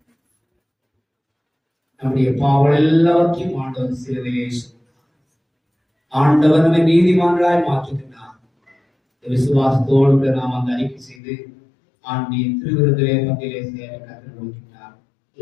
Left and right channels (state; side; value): drops out; right; at 11.2 s